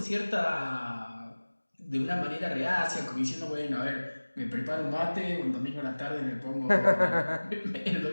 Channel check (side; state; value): both; inverted; correlation -1.00